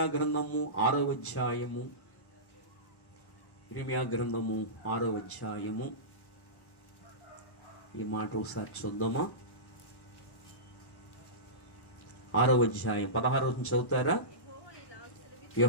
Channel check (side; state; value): right; late; 1.1 ms